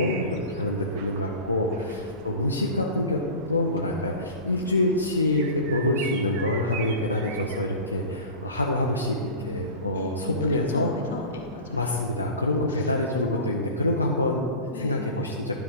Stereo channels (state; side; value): inverted; both; correlation -0.34